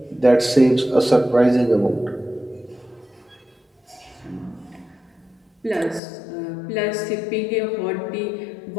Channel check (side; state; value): right; drops out; at 6.0 s